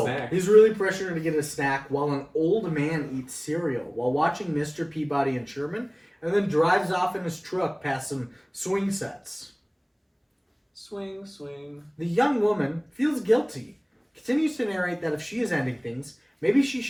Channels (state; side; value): identical; both; correlation 1.00